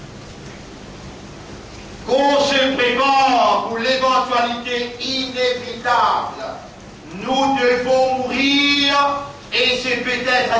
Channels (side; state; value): both; identical; correlation 1.00